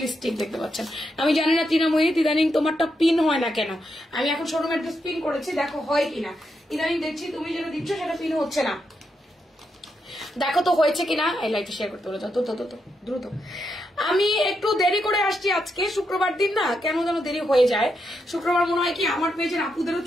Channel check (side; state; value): both; normal; correlation 0.83